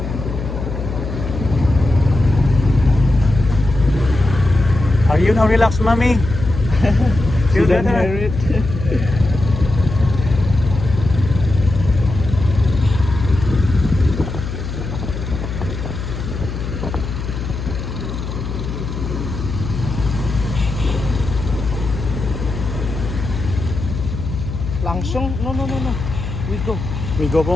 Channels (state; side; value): noise; left; hum, 6 dB below the sound